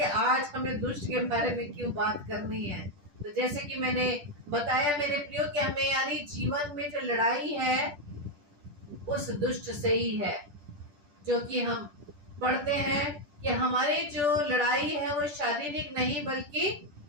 आज हमें दुष्ट के बारे में क्यों बात करनी है। तो जैसे कि मैंने बताया मेरे प्रियो कि हमें यानी जीवन में जो लड़ाई है उस दुष्ट से ही है, जो कि हम पढ़ते हैं कि हमारी जो लड़ाई है वो शारीरिक नहीं बल्कि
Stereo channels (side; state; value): left; late; 10 ms